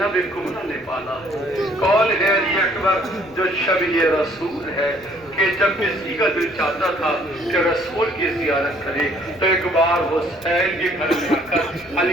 کمرہ نے پالا؟ کون ہے علی اکبر جو شبیہ رسول ہے کہ جب کسی کا دل چاہتا تھا کہ رسول کی زیارت کرے تو ایک بار حسین کے گھر میں آ کر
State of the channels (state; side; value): noise; left; rumble, 25 dB below the sound